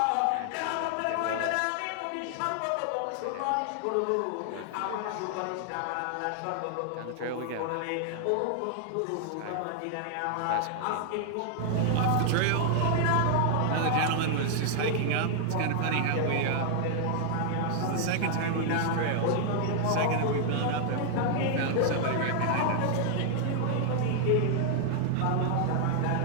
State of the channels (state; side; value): different; both; correlation 0.00